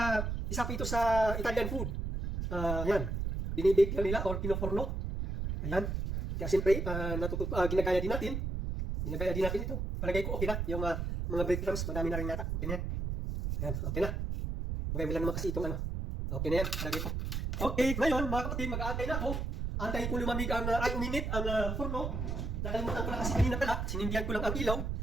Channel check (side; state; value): right; noise; rumble, 2 dB below the sound